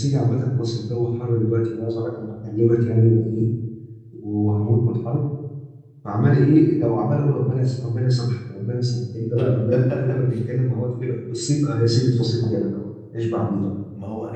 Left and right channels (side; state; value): both; identical; correlation 1.00